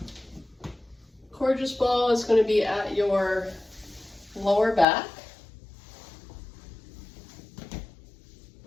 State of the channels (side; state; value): right; drops out; at 4.9 s